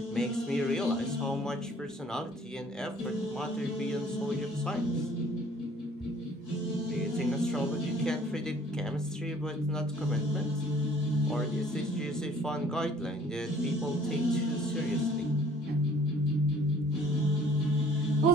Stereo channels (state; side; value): normal; both; correlation 0.55